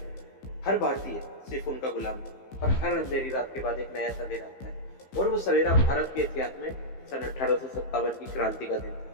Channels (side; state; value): right; late; 15 ms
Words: हर भारतीय सिर्फ उनका गुलाम था। और हर अंधेरी रात के बाद एक नया सवेरा आता है, और वो सवेरा भारत के इतिहास में सन 1857 की क्रांति का दिन